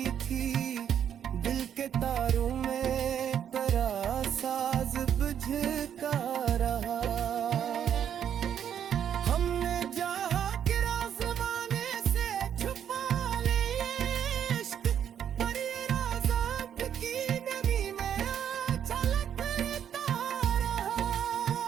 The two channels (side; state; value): left; quieter; 9.1 dB